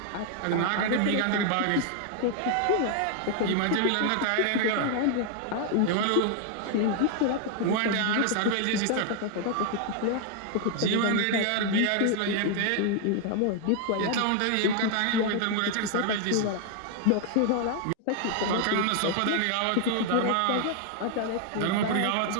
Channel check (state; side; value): different; both; correlation 0.00